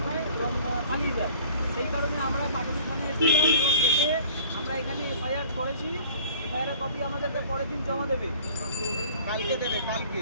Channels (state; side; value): inverted; both; correlation -0.49